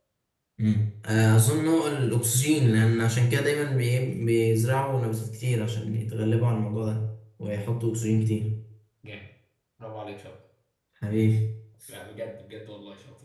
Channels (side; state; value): both; identical; correlation 1.00